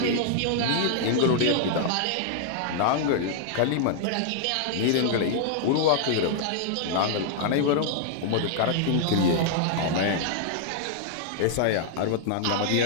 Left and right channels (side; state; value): both; different; correlation -0.01